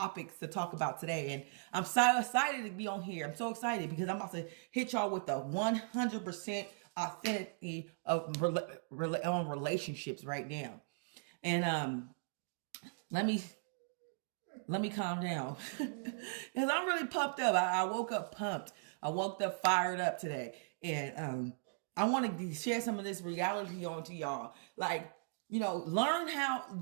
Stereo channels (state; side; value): silent; left; digital silence